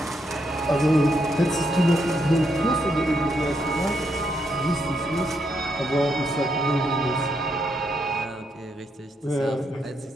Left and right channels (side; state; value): both; normal; correlation 0.78